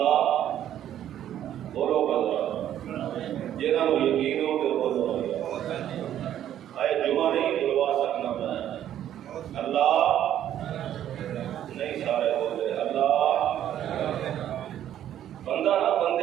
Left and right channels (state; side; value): quieter; left; 11.1 dB